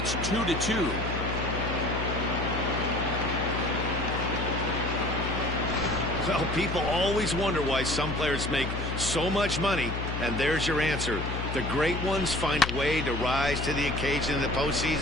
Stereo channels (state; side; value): noise; left; hum, 4 dB below the sound